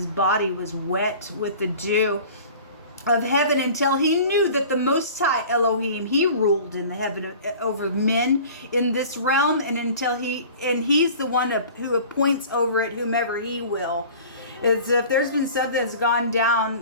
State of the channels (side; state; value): both; inverted; correlation -0.43